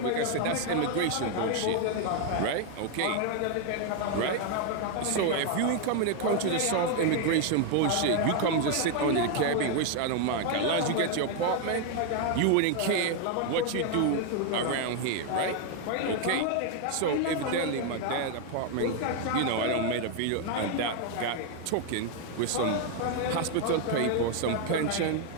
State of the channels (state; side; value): different; both; correlation 0.01